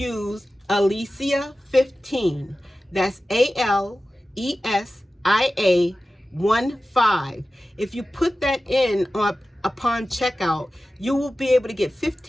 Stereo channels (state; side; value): normal; both; correlation 0.95